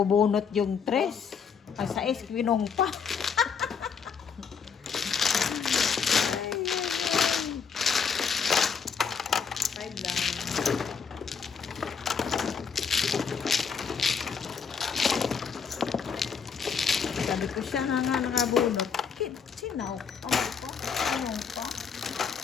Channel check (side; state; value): right; quieter; 6.3 dB